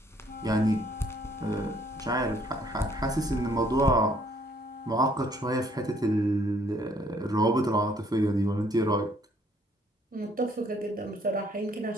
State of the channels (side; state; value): both; normal; correlation 0.64